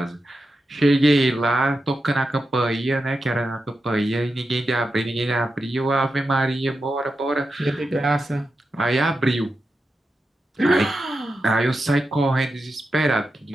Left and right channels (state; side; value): normal; both; correlation 0.89